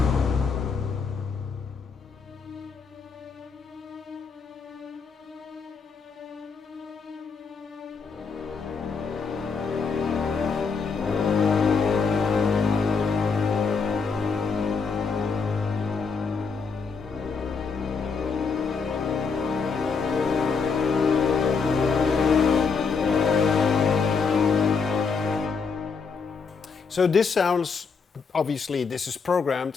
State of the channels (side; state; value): right; quieter; 5.2 dB